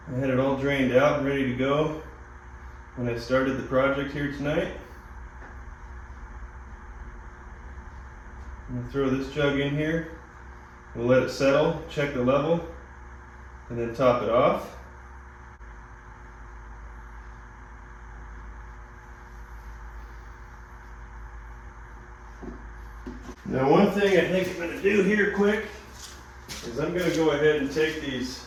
I had it all drained out and ready to go when I started the project here tonight. I'm going to throw this jug in here. We'll let it settle, check the level, and then top it off. Now one thing I think I'm going to do here quick is I'm going to go ahead and take these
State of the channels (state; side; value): identical; both; correlation 1.00